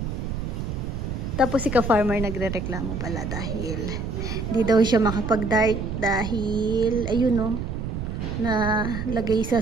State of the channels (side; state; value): right; noise; rumble, 4 dB below the sound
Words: Tapos si ka-farmer nagre-reklamo pala dahil hindi daw siya makapag-dart dahil ayun no, na lagay